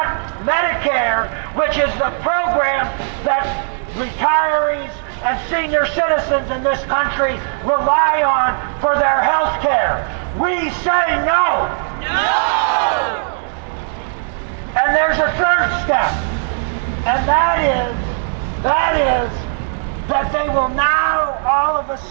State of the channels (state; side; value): silent; left; digital silence